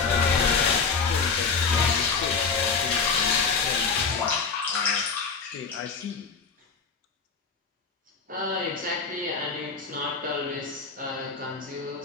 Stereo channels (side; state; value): right; quieter; 5.2 dB